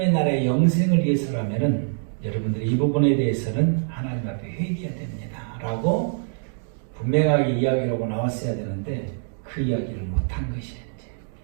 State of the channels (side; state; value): left; silent; digital silence